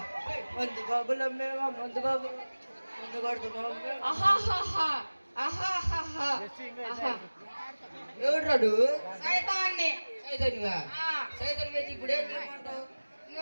మందు బాబులు అమ్మేవా మందు బాబు మందు కొడుతున్నాం ఆహాహాహా ఆహాహాహా ఆహా ఎవడు సైతాన్ని సైతన్యా సైతన్య అయితే ఇప్పుడు ఏం చేయమంటావు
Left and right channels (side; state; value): both; inverted; correlation -1.00